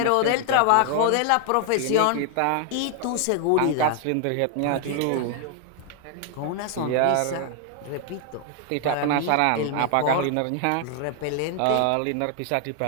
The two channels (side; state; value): both; different; correlation 0.00